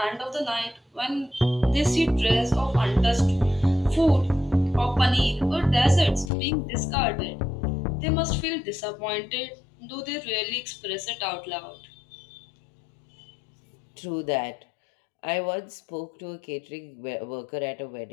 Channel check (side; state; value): right; drops out; at 6.3 s